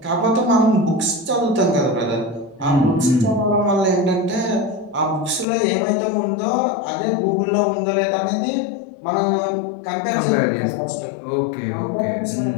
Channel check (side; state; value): right; drops out; at 5.5 s